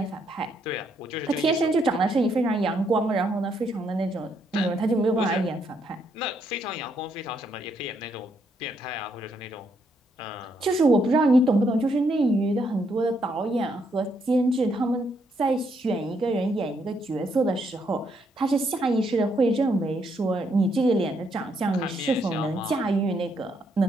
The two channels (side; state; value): both; normal; correlation 0.75